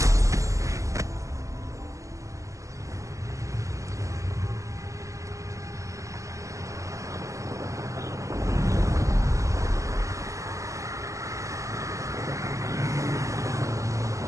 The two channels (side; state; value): left; late; 0.15 ms